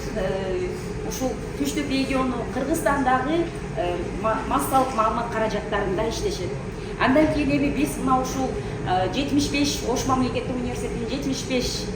ушул Түштүк региону Кыргызстандагы массалык маалымат каражаттарында иштешет. Андан кийин эми биз мына ушул 75 Ош мамлекеттик университетинин 75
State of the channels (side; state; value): both; identical; correlation 1.00